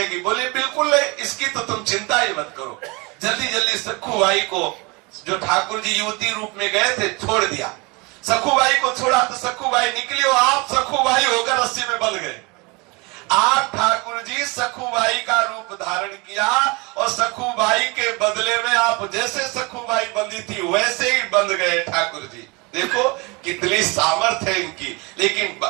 बोले बिल्कुल नहीं, इसकी तो तुम चिंता ही मत करो। जल्दी जल्दी सखू भाई को, जो ठाकुर जी युवती रूप में गए थे, छोड़ दिया। सखू भाई को छोड़ा तो सखू भाई निकली और आप सखू भाई होकर रस्सी में बंध गए। आप ठाकुर जी सखू भाई का रूप धारण किया और सखू भाई के बदले में आप जैसे सखू भाई बंधी थी वैसे ही बंध गए ठाकुर जी। देखो कितनी सामर्थ है इनकी। लेकिन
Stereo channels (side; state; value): left; quieter; 27.5 dB